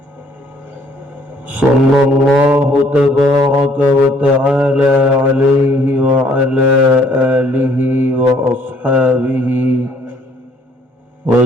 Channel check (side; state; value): both; normal; correlation 0.62